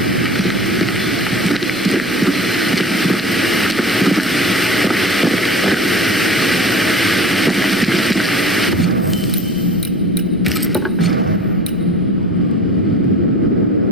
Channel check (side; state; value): right; noise; rumble, 25 dB below the sound